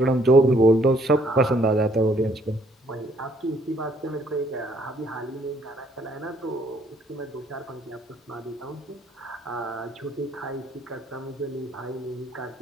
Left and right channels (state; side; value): normal; both; correlation 0.66